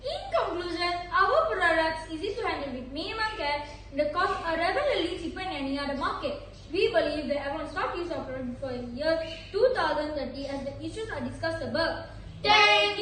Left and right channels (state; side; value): identical; both; correlation 1.00